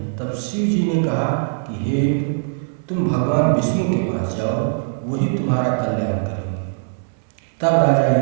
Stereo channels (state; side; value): silent; left; digital silence